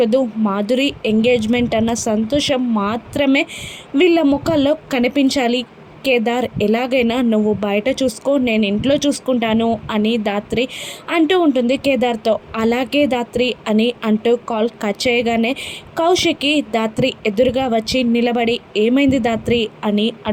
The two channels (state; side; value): identical; both; correlation 1.00